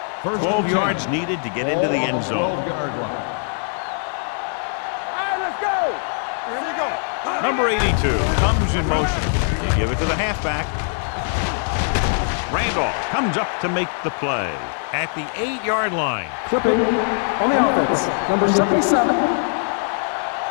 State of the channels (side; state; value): right; silent; 55 dB below the other